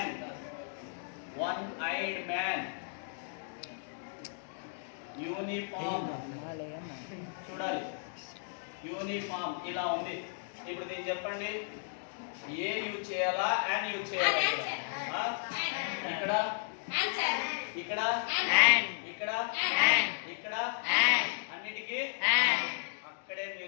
one eyed man. Uniform చూడాలి, యూనిఫామ్ ఇలా ఉంది. ఇప్పుడు దీన్ని చెప్పండి, ఏ యూజ్ చేయాలా అండ్ యూజ్ చేయాలా? ఇక్కడ ఇక్కడ ఇక్కడ ఇక్కడ అన్నిటికీ అక్కడే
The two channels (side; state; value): right; silent; digital silence